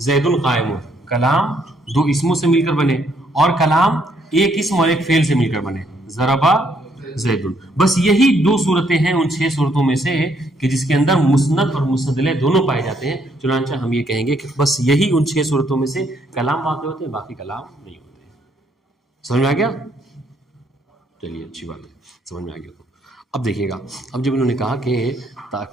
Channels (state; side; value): normal; both; correlation 0.70